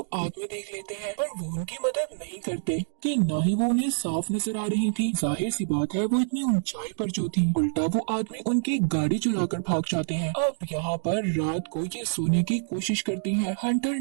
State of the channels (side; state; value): left; silent; digital silence